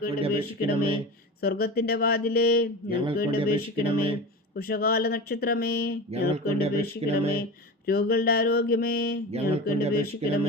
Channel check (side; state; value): both; normal; correlation 0.29